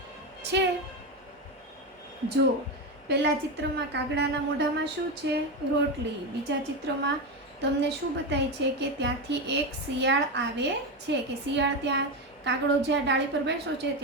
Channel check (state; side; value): normal; both; correlation 0.14